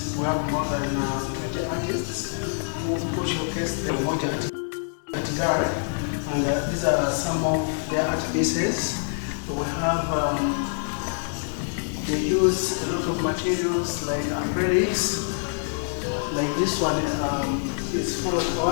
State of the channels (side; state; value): right; silent; 61 dB below the other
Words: We have more than 20 artists who showcase the UMOJA Art Gallery, and these are some of their art pieces. We have they use a lot of materials like acrylics. Like this one is full of